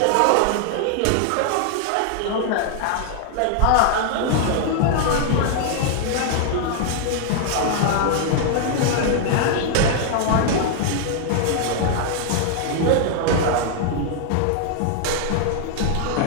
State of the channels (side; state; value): both; different; correlation 0.00